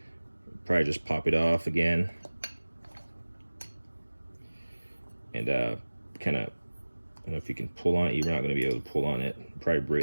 probably just pop it off again and kind of, I don't know if you can pull on it. You're not going to be able to pull on it. Probably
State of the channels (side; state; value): both; inverted; correlation -1.00